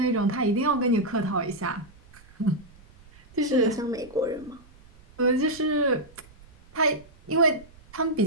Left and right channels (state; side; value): noise; right; rumble, 25 dB below the sound